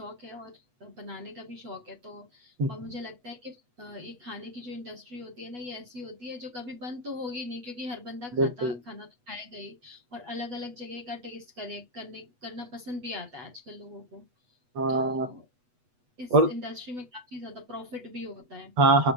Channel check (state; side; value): late; left; 8.2 ms